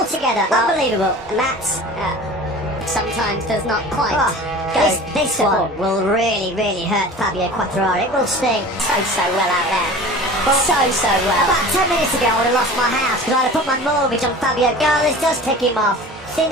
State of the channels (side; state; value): both; normal; correlation 0.39